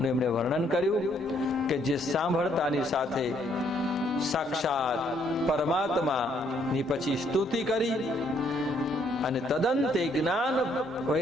એમણે વર્ણન કર્યું કે જે સાંભળતાની સાથે સાક્ષાત પરમાત્માની પછી સ્તુતિ કરી અને તદંતે જ્ઞાન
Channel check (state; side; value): normal; both; correlation 0.68